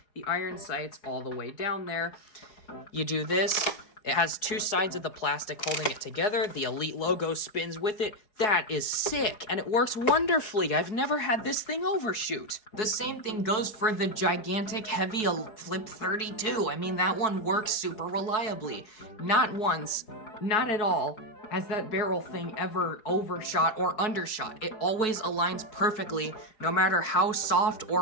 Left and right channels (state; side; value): late; right; 4.7 ms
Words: the iron sights all the way down there. You do this. It has two sides of the plastic holding it together. The Elite logo spins with it. That is sick, and it works wonderfully. I've never had this thing overshoot. The same thing goes for the gigantic, heavy Flip-32. I mean, that one works super reliably. Not once, not at all, has that barrel thing ever overshot or undershot. It always aligns perfectly, no matter how soft